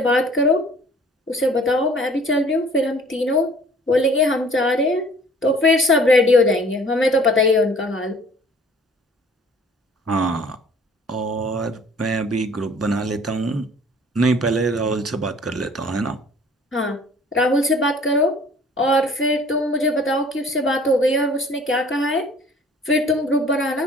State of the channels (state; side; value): normal; both; correlation 0.52